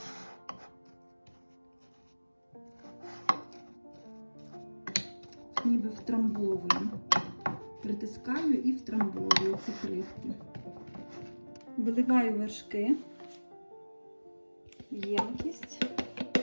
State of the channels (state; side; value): inverted; both; correlation -1.00